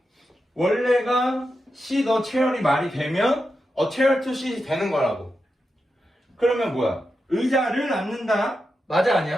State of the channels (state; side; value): normal; both; correlation 0.88